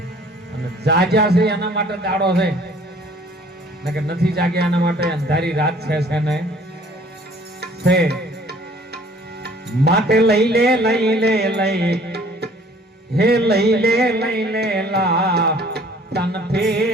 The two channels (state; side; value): normal; both; correlation 0.55